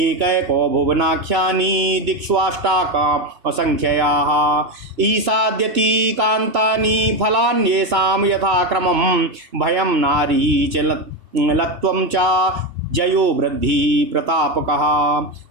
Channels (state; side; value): late; left; 2.6 ms